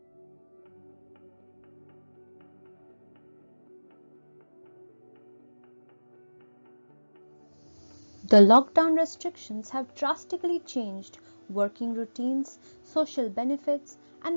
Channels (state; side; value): inverted; both; correlation -1.00